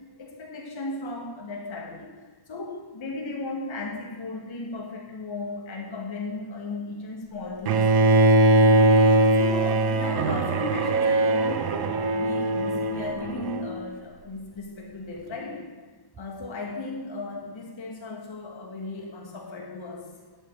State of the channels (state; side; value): late; right; 1.1 ms